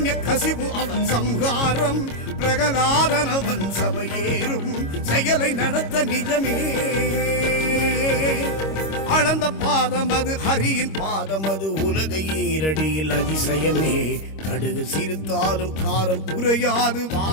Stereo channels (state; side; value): late; right; 26 ms